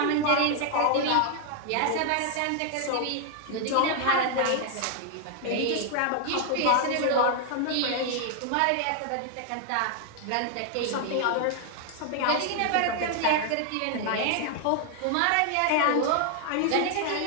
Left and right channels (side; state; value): both; different; correlation 0.00